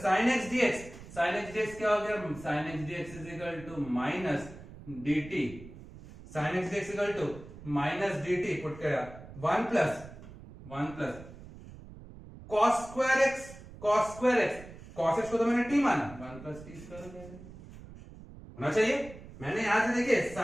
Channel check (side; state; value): right; noise; rumble, 16 dB below the sound